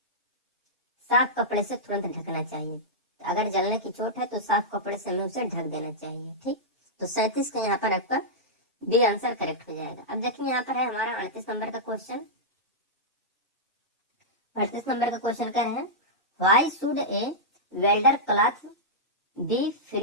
साफ कपड़े से तुरंत ढकना चाहिए। अगर जलने की चोट है तो साफ कपड़े से हमें उसे ढक देना चाहिए। ठीक, तो 37 का यहाँ पर आपका बी आंसर करेक्ट हो जाएगा। अब देखिए यहाँ पर है हमारा 38 नंबर का क्वेश्चन। 38 नंबर का क्वेश्चन कर रहे हैं, why should A welder cloth B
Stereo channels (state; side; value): normal; both; correlation -0.11